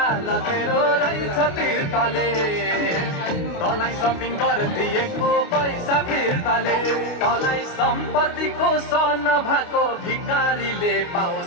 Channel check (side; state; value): right; late; 29 ms